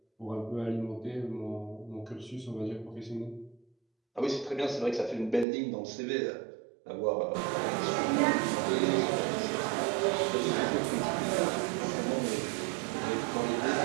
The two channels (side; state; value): left; drops out; at 5.5 s